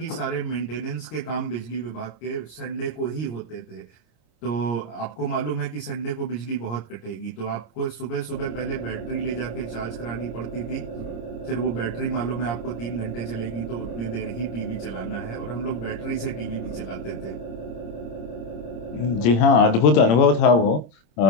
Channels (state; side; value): late; right; 26 ms